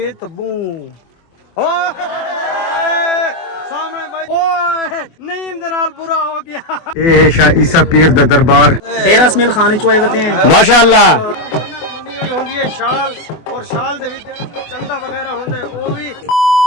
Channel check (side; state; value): right; late; 24 ms